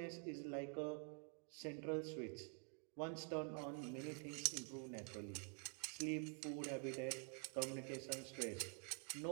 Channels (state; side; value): quieter; left; 39.2 dB